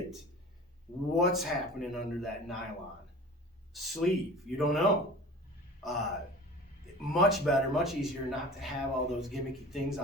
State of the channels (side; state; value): both; normal; correlation 0.40